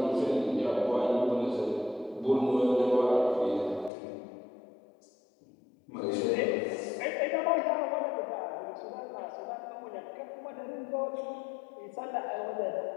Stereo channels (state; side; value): drops out; right; at 3.9 s